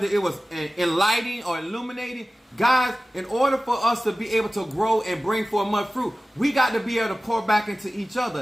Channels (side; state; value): both; normal; correlation 0.96